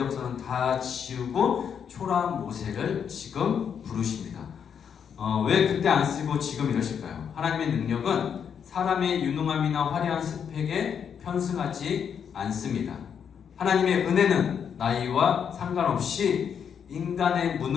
다 지우고 초라한 모세를 지금 부르십니다. 왜 그때 안 쓰고 지금 이러실까요? 하나님의 능력은 사람의 유능함이나 화려한 스펙에 편승하지 않습니다. 하나님의 은혜는 나이와 상관없이 인간의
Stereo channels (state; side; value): quieter; right; 7.6 dB